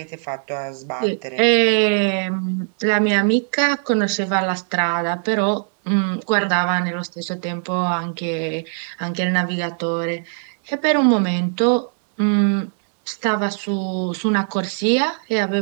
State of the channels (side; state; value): left; silent; digital silence